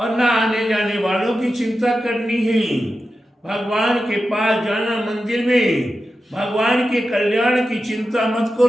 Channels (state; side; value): normal; both; correlation 0.91